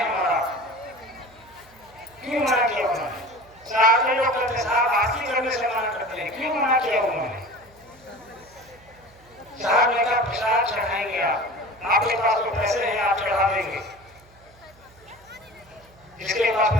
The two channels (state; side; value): noise; right; hum, 27 dB below the sound